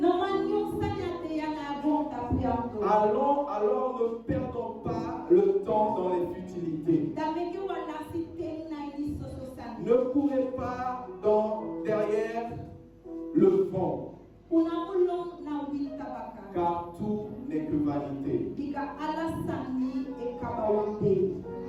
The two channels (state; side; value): identical; both; correlation 1.00